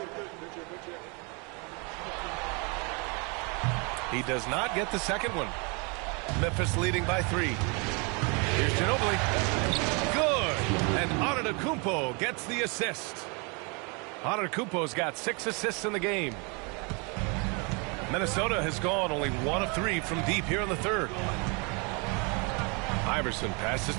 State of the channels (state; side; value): quieter; left; 32.1 dB